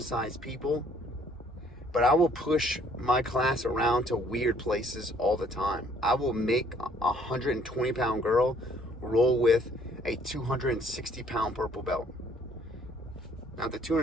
people, but I will push my class around to weird places all the time. I will make a 120-pound girl roll with a 260-pound purple belt. Now, the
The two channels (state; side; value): normal; both; correlation 0.62